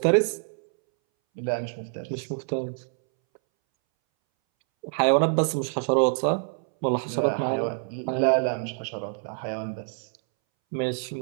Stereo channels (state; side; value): silent; left; 61 dB below the other